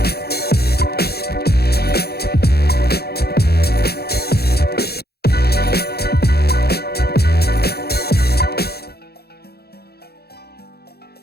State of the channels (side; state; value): right; late; 0.46 ms